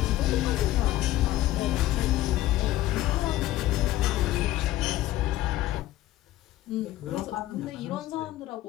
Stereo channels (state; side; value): quieter; right; 15.1 dB